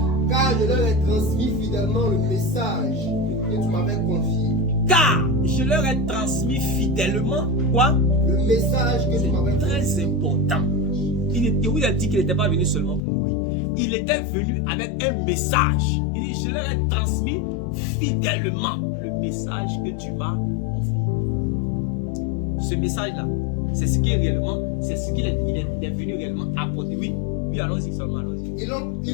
Car je leur ai transmis fidèlement le message que tu m'avais confié. Car je leur ai transmis fidèlement quoi? Le message que tu m'avais confié. Très important. Il vous a dit qu'il n'était pas venu seulement pour mourir. Il était venu avec un message. Il dit, je leur ai transmis fidèlement le message que tu m'as confié. Ce message-là, c'est ce qui est réellement, c'est ce qu'il est venu réellement apporter. Oui, oui, allons-y seulement, allons-y. Ils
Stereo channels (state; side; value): drops out; right; at 13.0 s